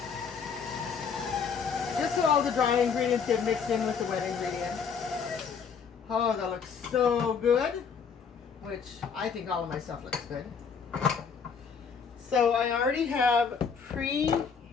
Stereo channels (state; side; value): quieter; right; 6.2 dB